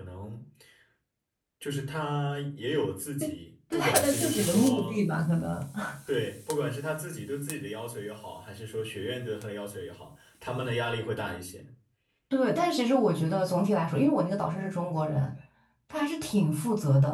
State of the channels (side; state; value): both; identical; correlation 1.00